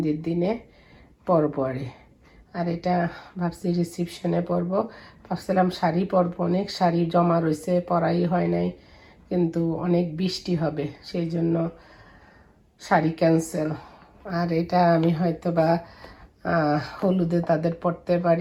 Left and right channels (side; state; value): both; identical; correlation 1.00